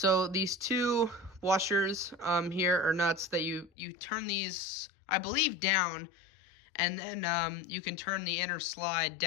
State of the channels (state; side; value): drops out; right; at 3.7 s